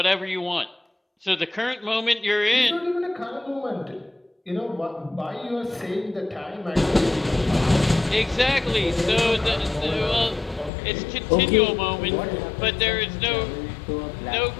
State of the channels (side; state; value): right; drops out; at 10.7 s